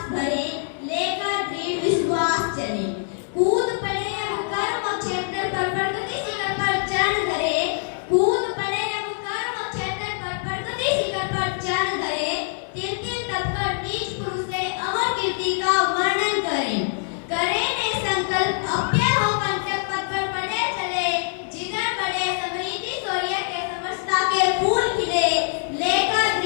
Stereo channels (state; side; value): silent; right; digital silence